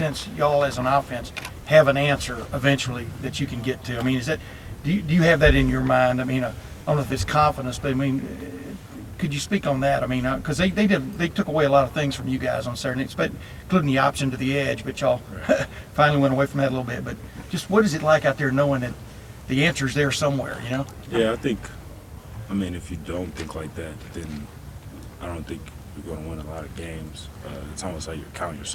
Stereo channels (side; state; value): both; identical; correlation 1.00